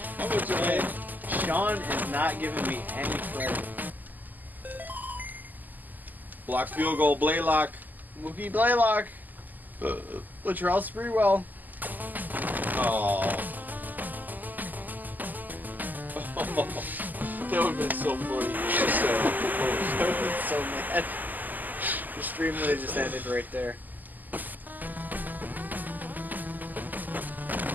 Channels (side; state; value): left; late; 0.084 ms